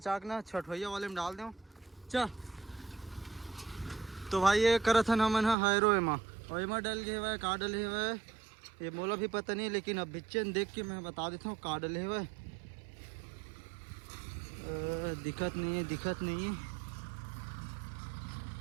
के ना छठवैया वाले में डाल दें। चल तो भाई ये करत हन हमन हैरो एमा डल गए हुए का डले हुए ये मोला भी पता नहीं, लेकिन अब बिच्चन देख के मैं बता देता हूँ का डले हुए। दिक्कत नहीं है।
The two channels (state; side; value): drops out; left; at 5.6 s